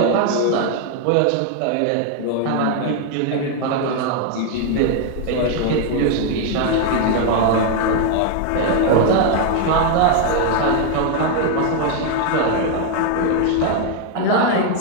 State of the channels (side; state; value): both; different; correlation 0.01